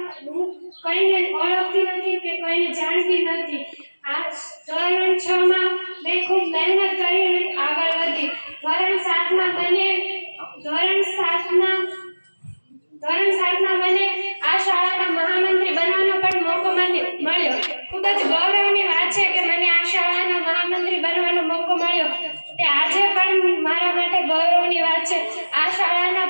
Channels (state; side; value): inverted; both; correlation -1.00